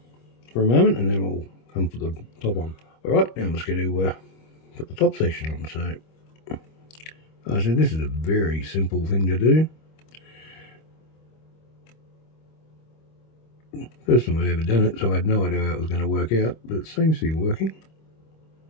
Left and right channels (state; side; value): late; right; 25 ms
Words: moment, and then we'll come put the top on. Alright, now I'm just going to put the top section on. So I said this is a very simple thing to do. First time I've ever done it, so I had no idea how it was going to work out, but it seems to be working.